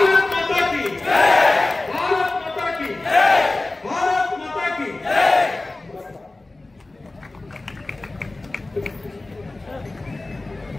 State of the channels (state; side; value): quieter; right; 3.0 dB